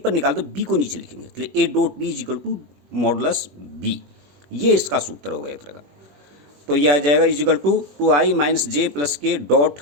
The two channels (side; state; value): left; late; 21 ms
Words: निकाल दो, बी को नीचे लिखेंगे, इसलिए A dot B is equal to modulus B. ये इसका सूत्र हो गया एक तरह का। तो ये आ जाएगा is equal to 2i minus j plus के dot